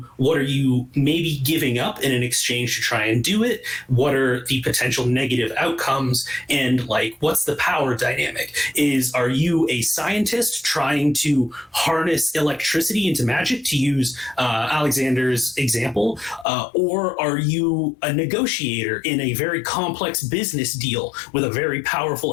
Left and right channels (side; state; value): right; drops out; at 16.4 s